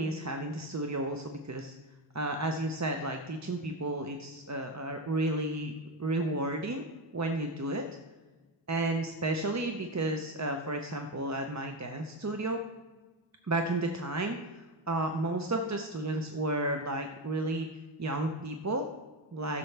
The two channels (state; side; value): normal; both; correlation 0.14